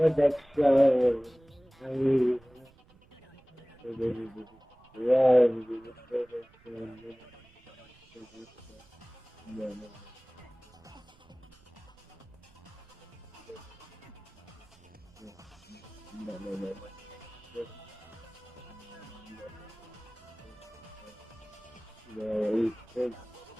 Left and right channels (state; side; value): noise; right; rumble, 27 dB below the sound